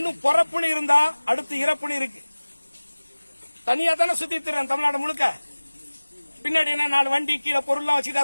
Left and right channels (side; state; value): both; inverted; correlation -1.00